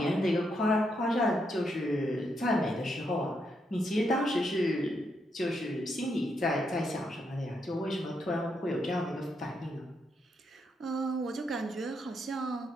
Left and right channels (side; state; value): both; normal; correlation 0.79